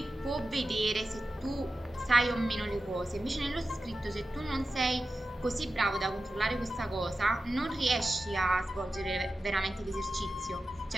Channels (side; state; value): both; normal; correlation 0.93